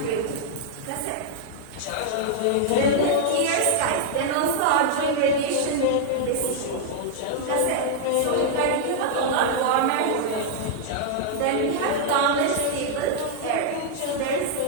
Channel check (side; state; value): both; different; correlation -0.01